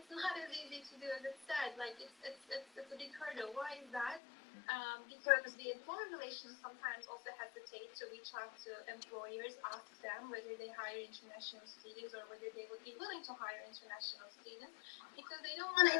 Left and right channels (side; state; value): right; drops out; at 4.2 s